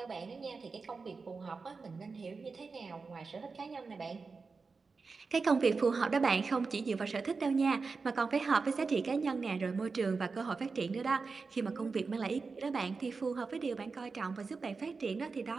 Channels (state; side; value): quieter; left; 4.5 dB